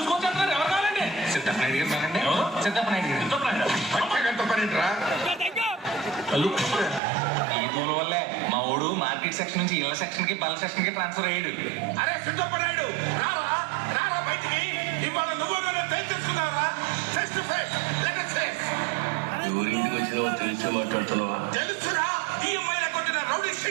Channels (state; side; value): drops out; left; at 7.0 s